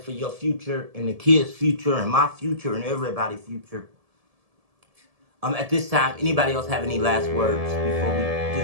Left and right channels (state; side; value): late; left; 1.7 ms